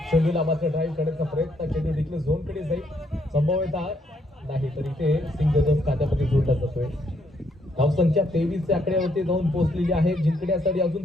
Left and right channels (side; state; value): both; normal; correlation 0.72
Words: चेंडूला मात्र ड्राईव्ह करण्याचा प्रयत्न. चेंडू डिक्लेअर झोन कडे जाईल. संभवतः नाही तर इथे सिंगल खात्यामध्ये जोडला जातोय. धावसंख्या 23 च्या आकड्यावरती जाऊन पोहोचलेली आहे. जिंकण्यासाठी अजून